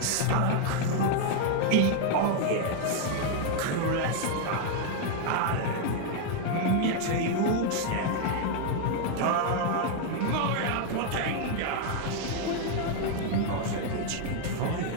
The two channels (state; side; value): different; both; correlation 0.00